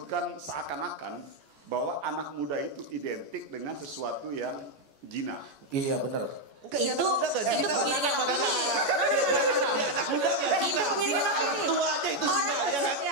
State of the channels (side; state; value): left; late; 14 ms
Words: seakan-akan bahwa anak muda itu identik dengan sesuatu yang jina. Iya benar. Enggak, Itu pengiringan opini. Anak muda nggak Itu pengiringan opini. Orang tua aja itu zina, ya kan?